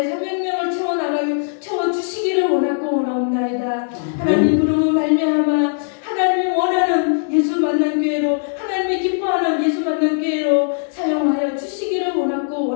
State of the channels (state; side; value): silent; right; digital silence